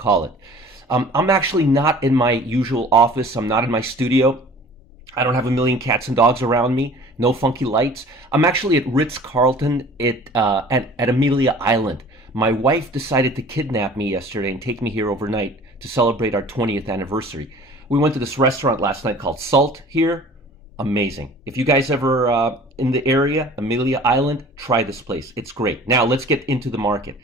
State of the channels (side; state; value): both; normal; correlation 0.46